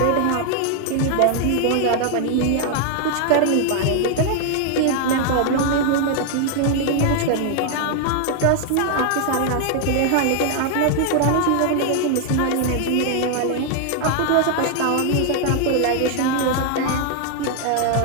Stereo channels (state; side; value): different; both; correlation 0.00